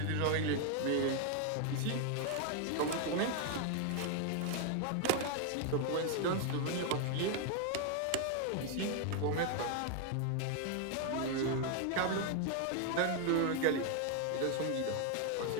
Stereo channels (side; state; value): both; different; correlation 0.00